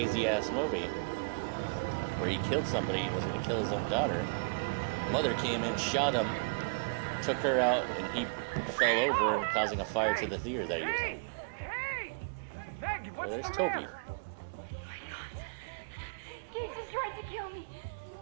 ass movie where he killed somebody and was going to kill his own daughter. Mother came in, shot him, took her out, and he fell over and causing a fire to the theater that he was in. There's Toby. Jesus tried to kill me. He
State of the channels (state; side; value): quieter; left; 38.8 dB